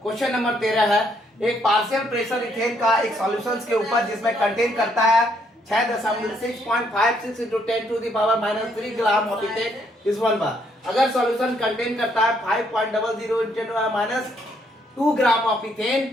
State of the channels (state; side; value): normal; both; correlation 0.71